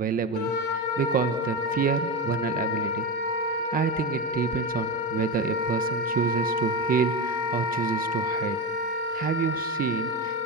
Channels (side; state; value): both; normal; correlation 0.17